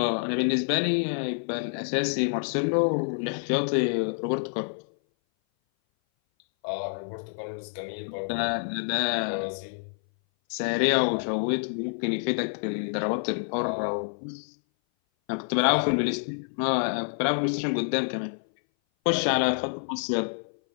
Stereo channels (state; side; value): silent; right; 58 dB below the other